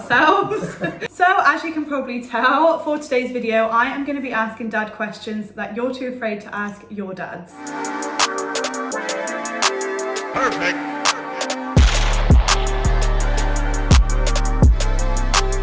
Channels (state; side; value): identical; both; correlation 1.00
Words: So as you can probably tell, for today's video, I am going to be asking Dad questions that you're too afraid to ask your dads. Perfect.